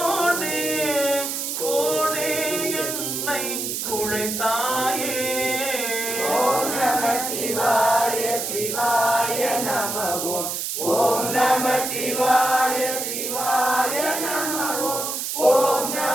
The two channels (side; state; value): right; noise; hiss, 3 dB below the sound